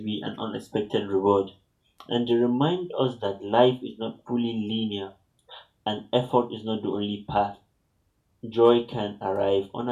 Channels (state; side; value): identical; both; correlation 1.00